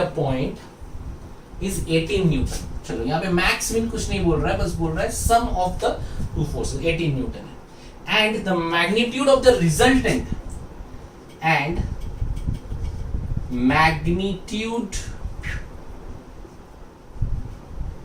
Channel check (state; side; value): identical; both; correlation 1.00